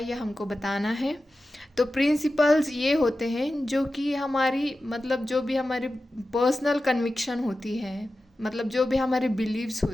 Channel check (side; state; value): both; normal; correlation 0.93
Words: ये हमको बताना है। तो प्रिंसिपल्स ये होते हैं जो कि हमारी मतलब जो भी हमारी पर्सनल कन्विक्शन होती है, मतलब जो भी हमारे बिलीव्स